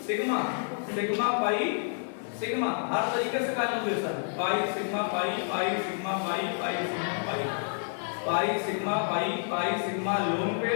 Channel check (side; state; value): right; silent; digital silence